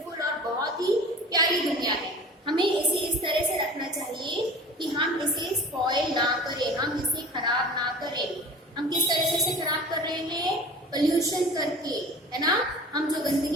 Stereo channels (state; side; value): normal; both; correlation 0.40